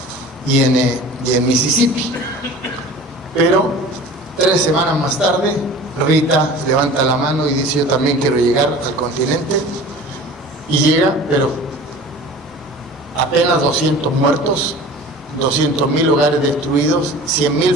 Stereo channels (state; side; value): normal; both; correlation 0.41